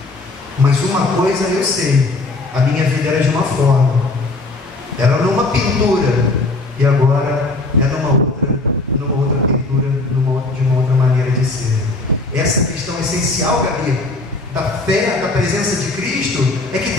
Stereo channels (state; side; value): quieter; right; 3.2 dB